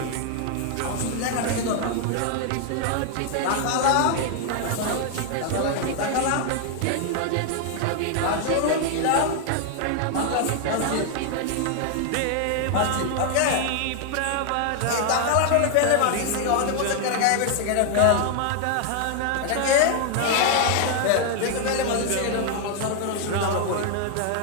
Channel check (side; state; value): both; different; correlation 0.00